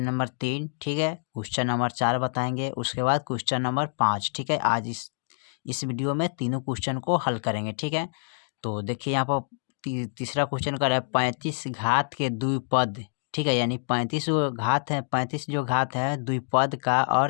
नंबर 3, ठीक है, क्वेश्चन नंबर 4 बताएंगे, उसके बाद क्वेश्चन नंबर 5, ठीक है। आज इस वीडियो में तीनों क्वेश्चन को हल करेंगे, ठीक है। तो देखिए यहाँ पर तीसरा क्वेश्चन कर रहा है 35 घात के द्विपद, ठीक है, यानी 35 जो घात है, 35 जो घात है द्विपद का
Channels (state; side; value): silent; right; digital silence